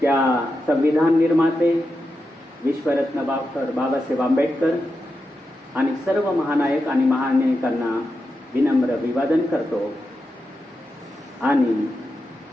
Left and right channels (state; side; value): normal; both; correlation 0.88